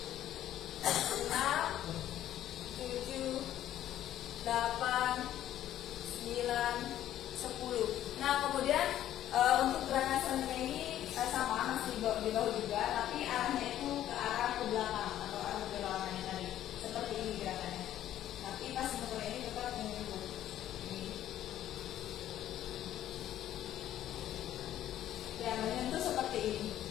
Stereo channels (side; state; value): right; quieter; 12.2 dB